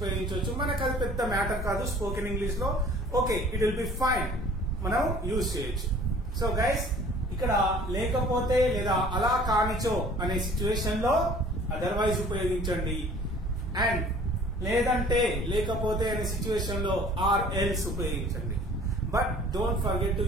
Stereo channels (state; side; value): normal; both; correlation 0.50